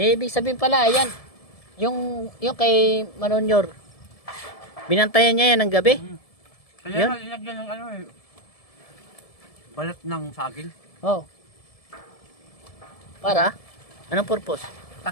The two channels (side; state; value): right; late; 1.7 ms